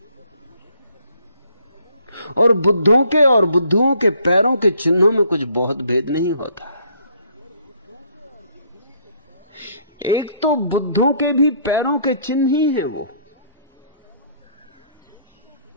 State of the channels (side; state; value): both; inverted; correlation -0.64